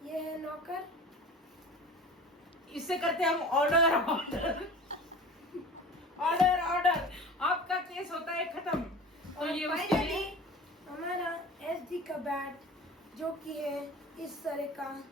ये है नॉकर। इससे करते हम ऑर्डर ऑर्डर ऑर्डर ऑर्डर। आपका केस होता है खत्म। तो और ये उसके फाइनली लिए हमारा एसडी का बैट जो कि है इस तरह का।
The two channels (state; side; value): normal; both; correlation 0.38